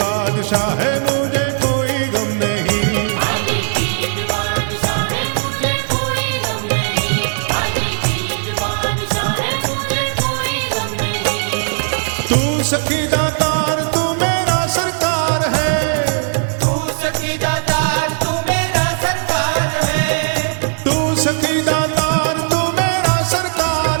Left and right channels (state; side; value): silent; left; 56 dB below the other